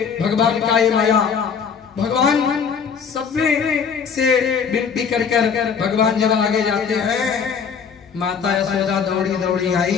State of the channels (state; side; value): quieter; right; 6.5 dB